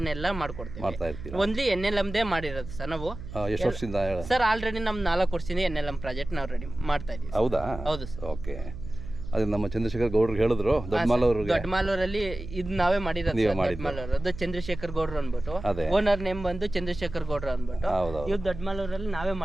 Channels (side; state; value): right; noise; hum, 11 dB below the sound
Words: ಎಲ್ಲ ಮಾಡ್ಕೊಡ್ತೀವಿ. ಓನ್ಲಿ ಎನ್ಎಲ್ಎಂದೇ ಮಾಡಿರೋದು ಸರ್ ನಾವು. ಸರ್ ಆಲ್ರೆಡಿ ನಮ್ 4 ವರ್ಷದಿಂದ ಎನ್ಎಲ್ಎಂ ಪ್ರಾಜೆಕ್ಟ್ ನಾವು ರೆಡಿ ಮಾಡ್ತಾ ಇದೀವಿ. ಹೌದಾ? ಹೌದು ಸರ್. ಓಕೆ. ಅದು ನಮ್ಮ ಚಂದ್ರಶೇಖರ್ ಗೌಡ್ರು ಹೇಳಿದ್ರು, ದೊಡ್ಡಮಾಲೂರಲ್ಲಿ ಇದು ನಾವೇ ಮಾಡಿರೋದು. ದೊಡ್ಡಮಾಲೂರದ್ದು ಚಂದ್ರಶೇಖರ್ ಗೌಡ್ರು ಅಂದ್ಬಿಟ್ಟು, ಓನರ್ ನೇಮ್ ಬಂದು ಚಂದ್ರಶೇಖರ್ ಗೌಡ್ರು ಅಂದ್ಬಿಟ್ಟು. ಇವ್ ದೊಡ್ಡಮಾಲೂರಲ್ಲಿ ನಾವೇ